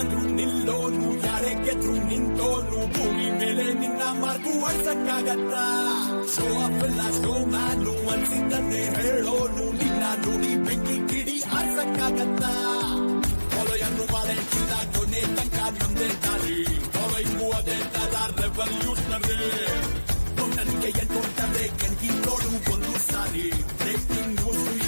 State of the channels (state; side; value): inverted; both; correlation -1.00